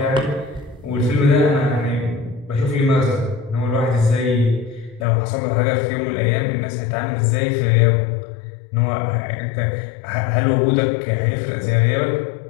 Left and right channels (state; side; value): drops out; right; at 5.1 s